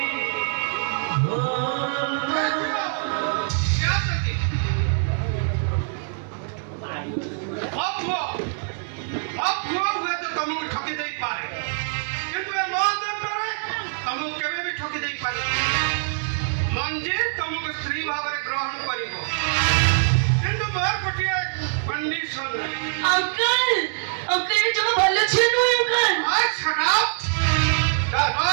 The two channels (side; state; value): left; silent; digital silence